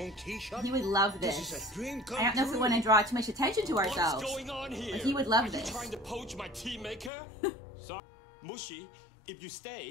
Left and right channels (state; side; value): drops out; right; at 7.1 s